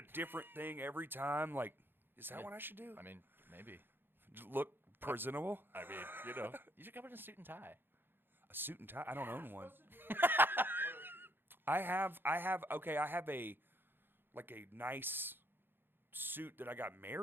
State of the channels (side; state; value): left; late; 0.10 ms